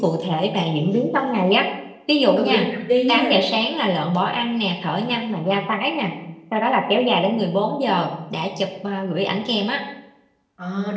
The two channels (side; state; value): both; identical; correlation 1.00